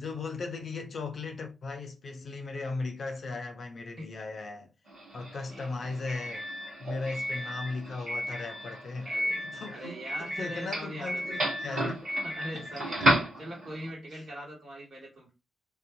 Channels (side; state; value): both; normal; correlation 0.84